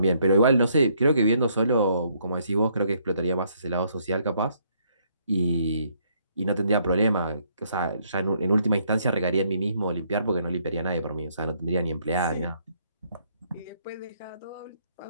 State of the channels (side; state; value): both; inverted; correlation -0.70